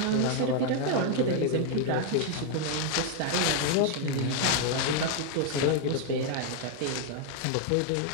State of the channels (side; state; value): both; different; correlation 0.00